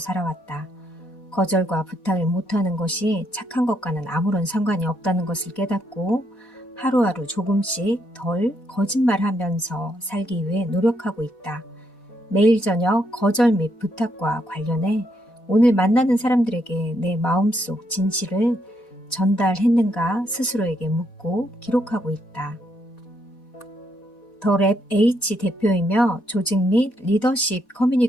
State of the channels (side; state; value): right; late; 4.1 ms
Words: 거절과 부탁을 못하는 것이 착한 것과는 아무런 상관이 없다는 것을 깨닫고 하루하루 조금씩 덜 거짓말하면서 살기 위해 노력하고 있다. 매일 저녁 거절 및 부탁과 관련해 오늘 만나는 사람들에게 내 마음속 진실을 전달했는가 스스로에게 묻고 기록하고 있다. 더 랩 H 대표이며 조직 및 리더십